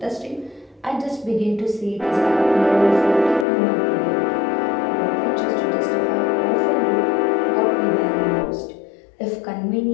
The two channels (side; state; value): right; drops out; at 3.5 s